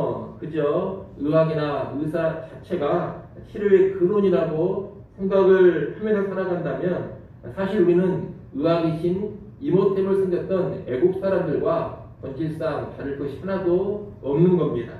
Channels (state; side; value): identical; both; correlation 1.00